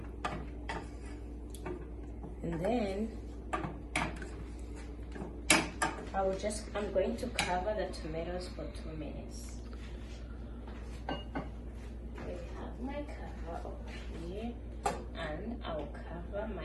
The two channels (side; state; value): both; identical; correlation 1.00